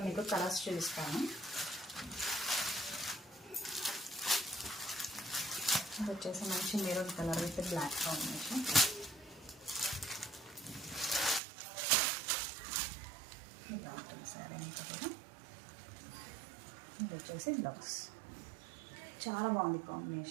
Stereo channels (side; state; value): left; drops out; at 11.4 s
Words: మీకు కలర్స్ చూపిస్తాను. ఇది వచ్చేసి మంచి maroon colour with black combination. ఇలా ఉంటుంది శారీ అంతా కూడా. ఇది వచ్చేసి బ్లౌజ్, చాలా బాగుంది